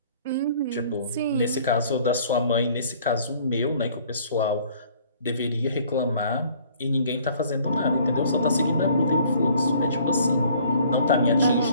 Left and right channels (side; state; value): both; inverted; correlation -0.56